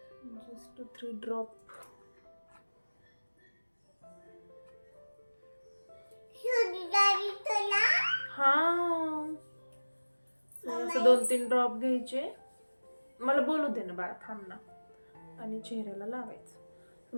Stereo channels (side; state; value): both; inverted; correlation -1.00